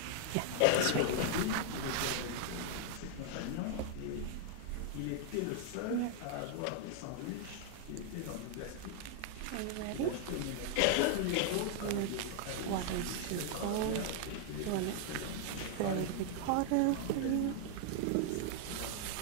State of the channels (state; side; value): different; both; correlation 0.00